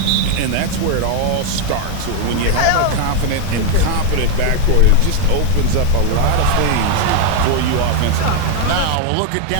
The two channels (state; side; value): different; both; correlation 0.01